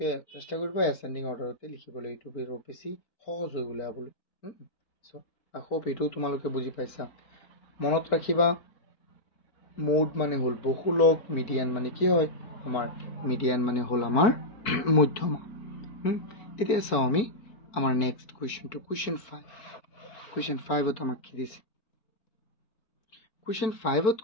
চেষ্টা কৰিবা ascending order তে লিখিবলৈ এইটো বেছি সহজ হৈ উলাবলৈ সো I hope এটো তোমালোকে বুজি পাইছা মনত ৰাখিবা মোড মানে হল বহুলক মিডিয়ান মানে কি হয় আমাৰ মিডিয়ান মানে হল আমাৰ মধ্যমা এতিয়া চাও আমি আমাৰ নেক্সট কোৱেশ্চনটো কোৱেশ্চন 5 ত আমাক কি দিছে কোৱেশ্চন 5 ত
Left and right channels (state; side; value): late; right; 4.5 ms